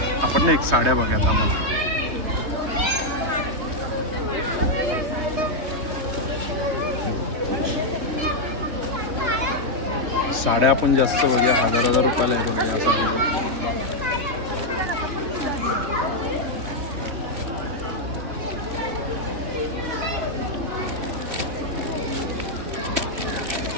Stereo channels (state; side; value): late; left; 3.3 ms